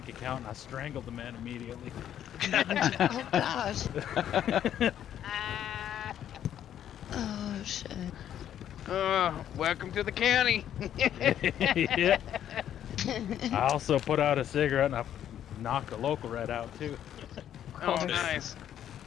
account, and I strangled the man immediately. Oh, gosh. Oh, shit. Welcome to the county. Yeah. I also put out a cigarette and I knocked a local rat out too. Oh, nice.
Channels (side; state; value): right; quieter; 10.4 dB